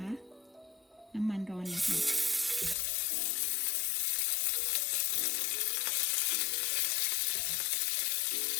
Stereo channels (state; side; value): drops out; right; at 2.8 s